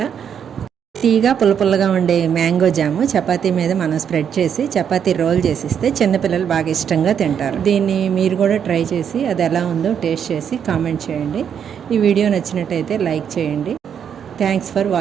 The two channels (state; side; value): quieter; left; 8.1 dB